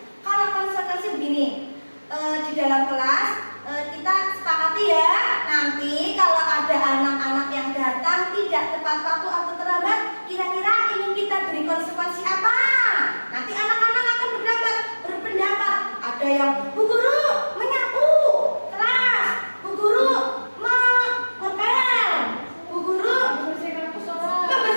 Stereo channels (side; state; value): both; inverted; correlation -1.00